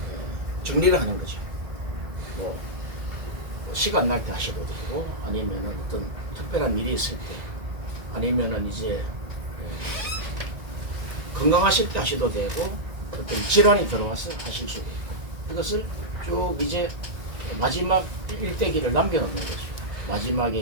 정리를 하는 거죠. 뭐 시간 날 때 하셔도 되고 아니면은 어떤 특별한 일이 있을 때 아니면은 이제 건강하실 때 하셔도 되고 어떤 질환이 들어와서 하실 수도 있고, 이것을 쭉 이제 마지막 일대기를 남겨놓는 거죠. 마지막에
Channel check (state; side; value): late; left; 1.9 ms